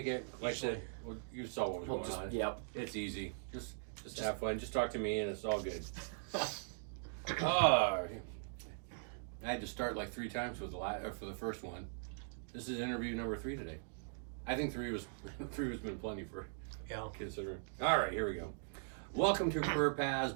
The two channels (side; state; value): left; silent; digital silence